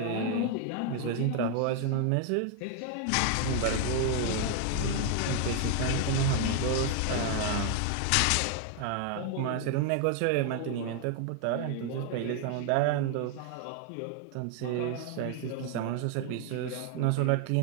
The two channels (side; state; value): both; different; correlation 0.00